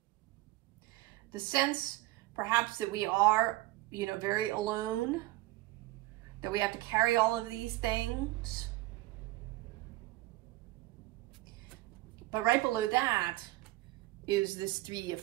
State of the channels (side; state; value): left; quieter; 18.6 dB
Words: The sense, perhaps, that we are, you know, very alone, that we have to carry all of these things. But right below that is this 3 of